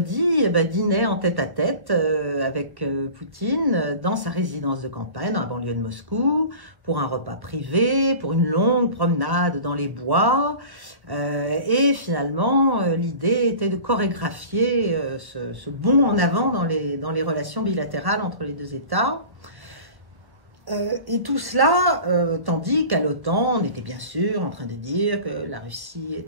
dînait en tête-à-tête avec Poutine dans sa résidence de campagne, dans la banlieue de Moscou, pour un repas privé, pour une longue promenade dans les bois. Et finalement, l'idée était de chorégraphier ce bond en avant dans les relations bilatérales entre les deux États. Et tout cela, tandis qu'à l'OTAN, on était bien sûr en train de dire que la Russie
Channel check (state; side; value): late; left; 1.1 ms